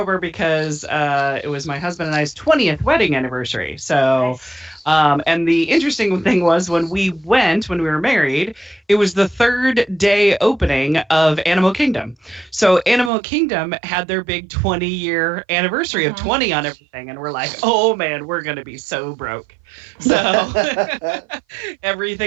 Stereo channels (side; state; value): left; drops out; at 13.1 s